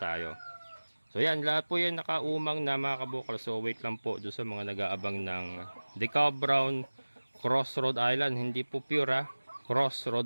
So yan, lahat po yan nakaumang na mga kabukal. So wait lang po doon sa mga nag-aabang ng Decab Brown Cross Rhode Island. Hindi po pure Cross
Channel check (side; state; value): both; inverted; correlation -1.00